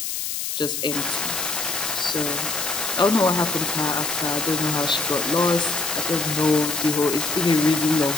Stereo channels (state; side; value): noise; left; hiss, 3 dB below the sound